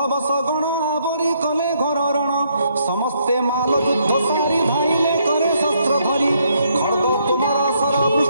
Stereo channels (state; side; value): inverted; both; correlation -0.72